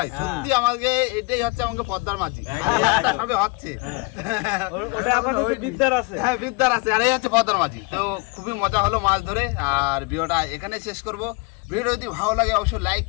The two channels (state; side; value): quieter; right; 29.3 dB